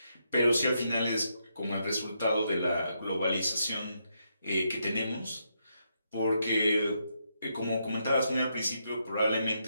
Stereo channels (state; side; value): inverted; both; correlation -0.80